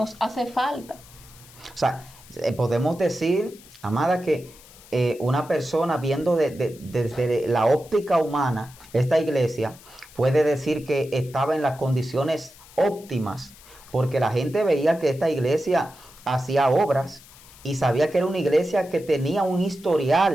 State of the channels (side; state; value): left; noise; hiss, 22 dB below the sound